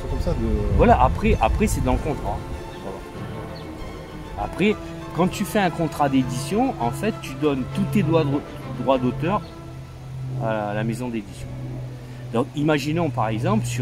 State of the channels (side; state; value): both; identical; correlation 1.00